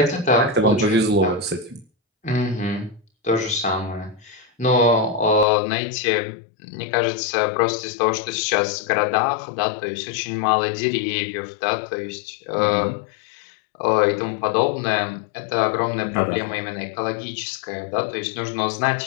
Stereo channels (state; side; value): drops out; right; at 5.5 s